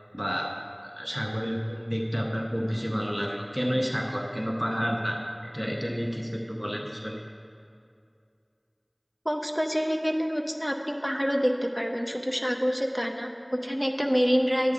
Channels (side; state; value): both; identical; correlation 1.00